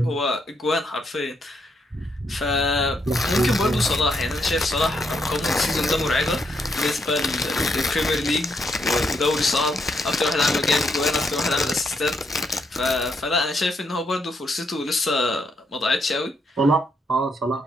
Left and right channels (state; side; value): normal; both; correlation 0.76